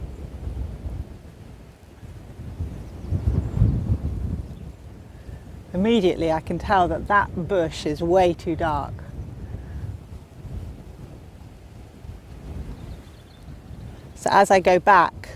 Immediately I can tell that that bush is way too dark. So as I go back,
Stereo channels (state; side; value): identical; both; correlation 1.00